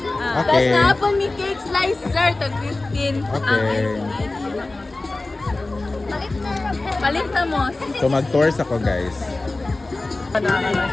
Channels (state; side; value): quieter; right; 3.1 dB